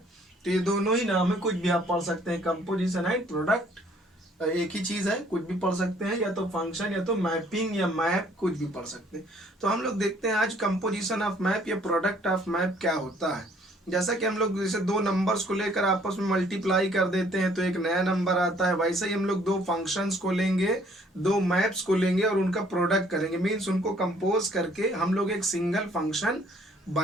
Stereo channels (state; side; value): normal; both; correlation 0.61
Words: तो ये दोनों ही नाम है, कुछ भी आप पढ़ सकते हैं। कंपोजिशन एंड प्रोडक्ट एक ही चीज़ है, कुछ भी पढ़ सकते हैं, या तो फंक्शन या तो मैपिंग या मैप, कुछ भी पढ़ सकते हैं। तो हम लोग देखते हैं आज कंपोजिशन ऑफ मैप या प्रोडक्ट ऑफ मैप क्या होता है। जैसा कि हम लोग जैसे दो नंबर्स को लेकर आपस में मल्टीप्लाई कर देते हैं तो एक नया नंबर आता है, वैसे ही हम लोग दो फंक्शंस को लेंगे, दो मैप्स को लेंगे और उनका प्रोडक्ट करेंगे। मीन्स उनको कंपोज करके हम लोग एक सिंगल फंक्शन